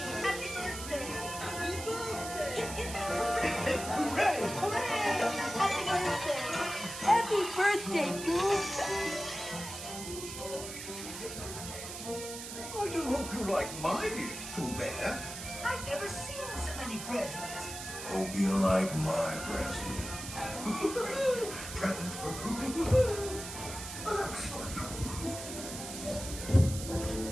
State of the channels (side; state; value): right; noise; hiss, 9 dB below the sound